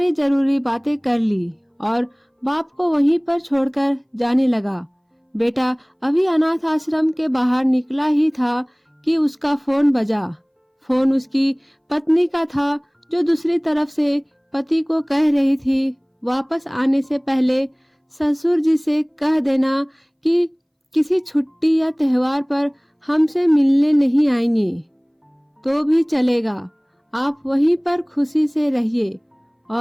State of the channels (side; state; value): both; identical; correlation 1.00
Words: जरूरी बातें कर ली और बाप को वहीं पर छोड़कर जाने लगा। बेटा अभी अनाथ आश्रम के बाहर निकला ही था कि उसका फोन बजा। फोन उसकी पत्नी का था, जो दूसरी तरफ से पति को कह रही थी वापस आने से पहले ससुर जी से कह देना कि किसी छुट्टी या त्योहार पर हमसे मिलने नहीं आएंगे तो भी चलेगा, आप वहीं पर खुशी से रहिए